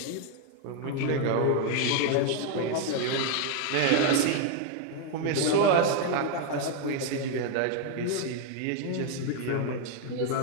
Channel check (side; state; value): both; different; correlation 0.01